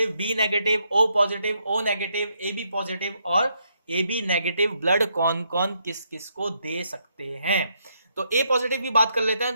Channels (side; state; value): both; inverted; correlation -0.76